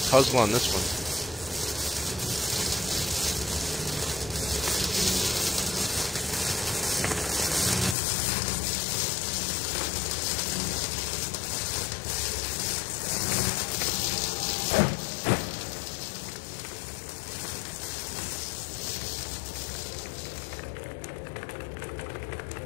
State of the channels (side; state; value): right; drops out; at 8.0 s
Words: puzzle on this one?